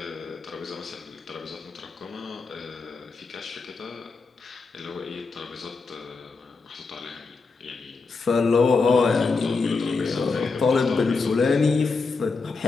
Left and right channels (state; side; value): quieter; right; 4.3 dB